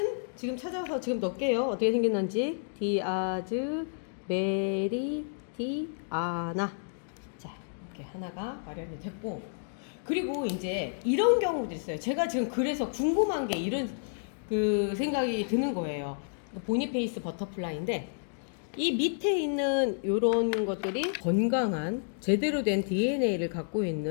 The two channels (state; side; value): silent; right; digital silence